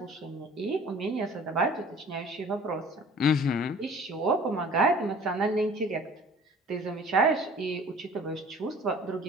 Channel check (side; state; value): both; normal; correlation 0.48